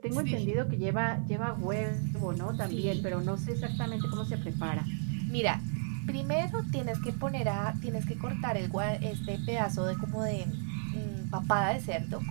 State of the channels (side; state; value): left; silent; digital silence